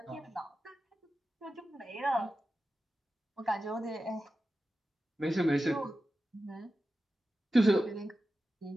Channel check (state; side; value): normal; both; correlation 0.93